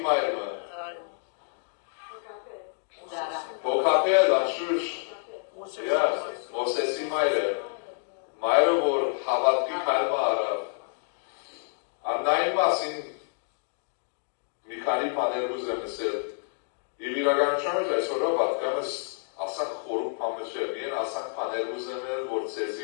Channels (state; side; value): silent; right; digital silence